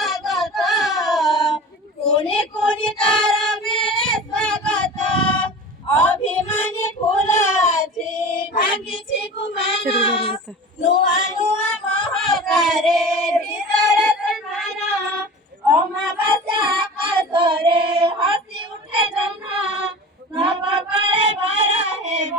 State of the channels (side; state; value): both; normal; correlation 0.36